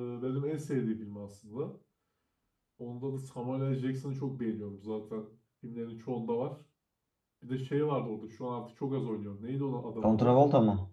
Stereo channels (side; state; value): both; identical; correlation 1.00